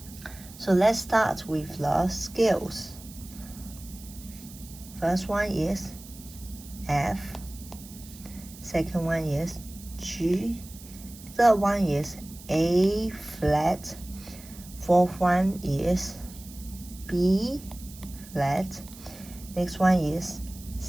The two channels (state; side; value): noise; right; hiss, 18 dB below the sound